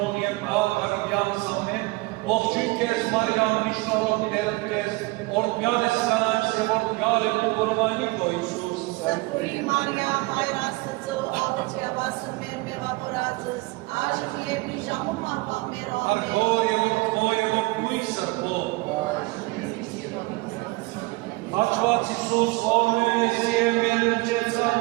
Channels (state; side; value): quieter; left; 23.4 dB